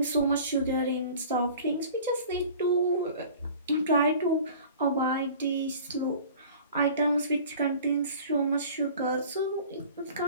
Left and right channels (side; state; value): both; inverted; correlation -0.44